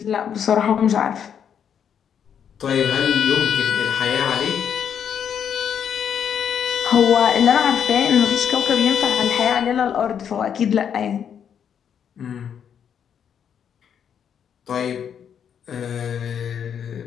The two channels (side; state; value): right; quieter; 8.2 dB